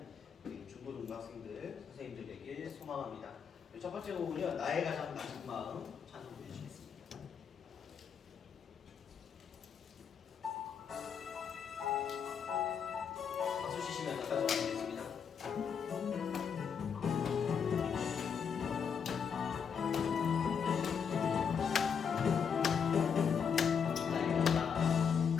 우리 중고등부 학생들, 선생님들에게 소망합니다. 첫 번째 곡은요, 나의 가장 낮은 마음 찬송 보여주시겠습니다. 박수 치시면서 가져가겠습니다.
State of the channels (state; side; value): quieter; right; 6.9 dB